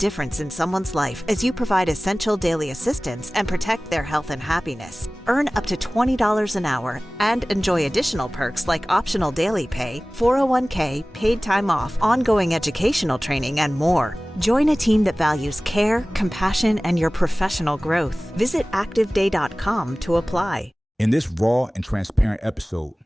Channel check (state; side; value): normal; both; correlation 0.98